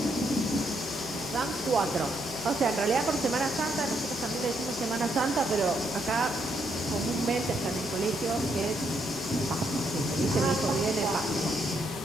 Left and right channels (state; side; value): normal; both; correlation 0.75